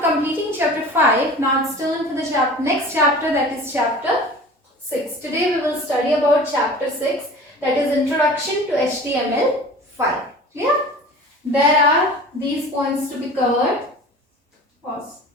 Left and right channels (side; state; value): both; normal; correlation 0.40